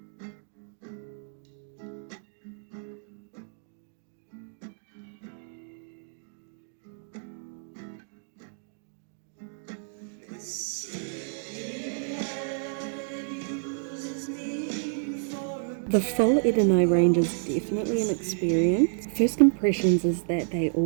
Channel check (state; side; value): silent; left; digital silence